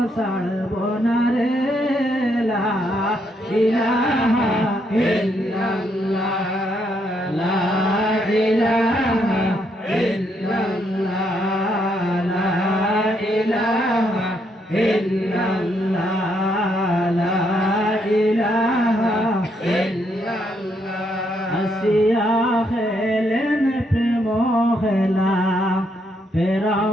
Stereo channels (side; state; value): both; normal; correlation 0.75